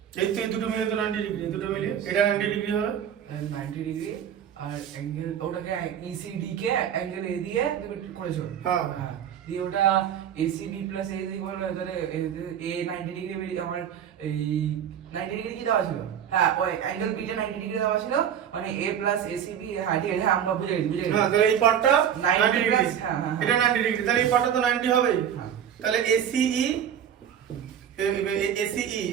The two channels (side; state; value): left; quieter; 9.1 dB